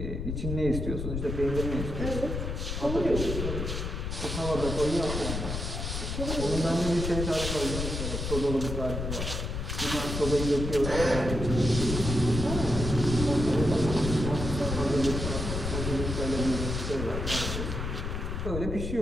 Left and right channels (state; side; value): noise; left; rumble, 3 dB below the sound